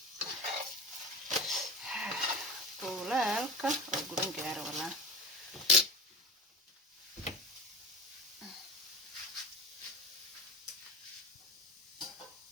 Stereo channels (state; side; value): normal; both; correlation 0.31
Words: طولالك وقولن جار ولا